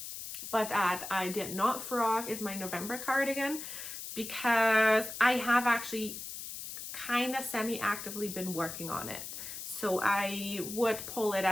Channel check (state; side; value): noise; left; hiss, 8 dB below the sound